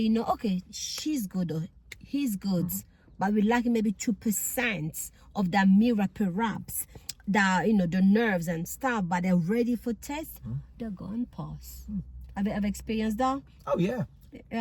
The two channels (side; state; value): both; identical; correlation 1.00